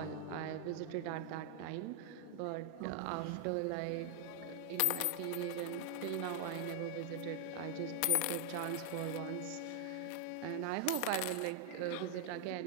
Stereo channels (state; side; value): different; both; correlation 0.00